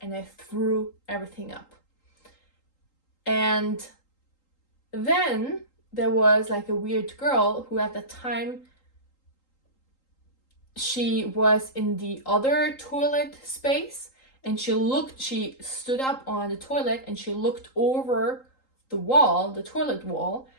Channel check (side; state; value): right; late; 3.8 ms